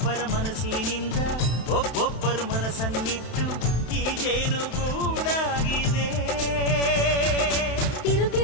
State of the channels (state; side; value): late; right; 31 ms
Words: ಮನಸ್ಸಿನಿಂದ ಒಬ್ಬೊಬ್ಬರು ಮನಸ್ಸನ್ನಿಟ್ಟು ಈ ಜೇನುಗೂಡಾಗಿದೆ.